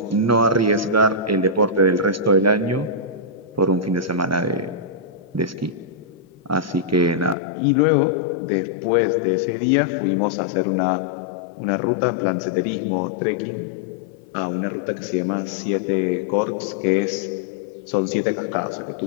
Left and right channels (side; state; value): right; drops out; at 7.4 s